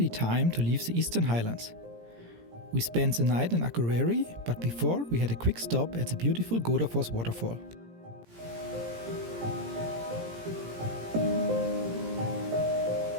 time to leave the Eastern Highlands. We spent the night in Akureyri, but before we had a quick stop at the beautiful Godafoss waterfall.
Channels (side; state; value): left; late; 17 ms